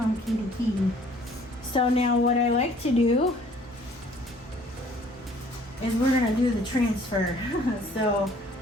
kitty kitty. So now what I like to do is we're gonna do the transfer. So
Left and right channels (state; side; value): normal; both; correlation 0.57